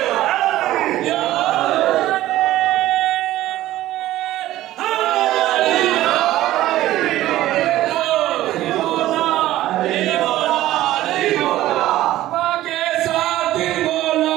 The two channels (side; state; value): left; quieter; 14.9 dB